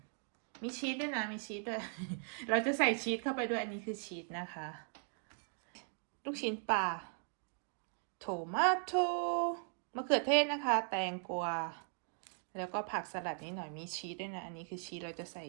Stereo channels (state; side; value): silent; left; 52 dB below the other